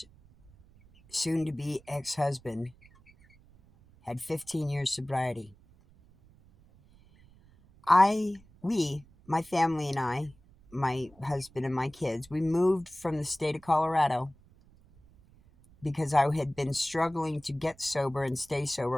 soon-to-be ex-husband had 15 years sobriety. My family and I, my husband and my kids, we moved from the state of Colorado because I had been struggling to get sober and stay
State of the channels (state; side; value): noise; right; rumble, 27 dB below the sound